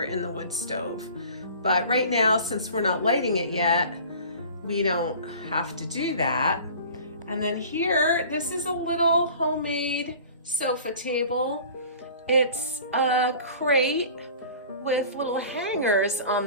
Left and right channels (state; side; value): inverted; both; correlation -0.43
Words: in the wood stove. But right now, since we're not lighting it yet, we don't have to do that. And then here, this is a little homemade sofa table. It's a crate with little hangers on